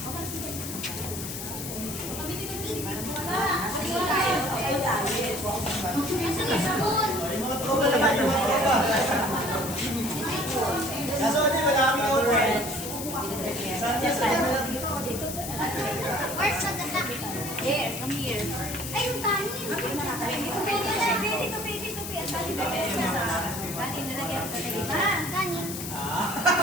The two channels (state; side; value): noise; left; hiss, 7 dB below the sound